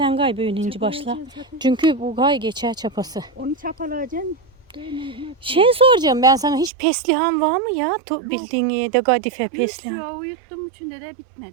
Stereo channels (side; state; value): left; drops out; at 6.7 s